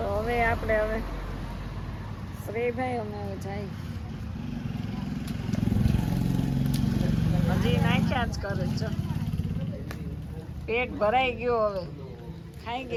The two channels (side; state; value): both; identical; correlation 1.00